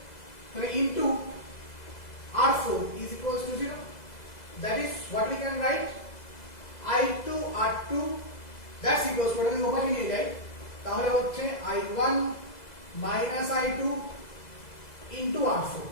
তাহলে into R4 is equals to 0. That is what we can write I2 R2 that's equals to, ওটাকে ওপাশে নিয়ে যাই তাহলে হচ্ছে I1 minus I2 into R4.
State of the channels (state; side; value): late; right; 2.0 ms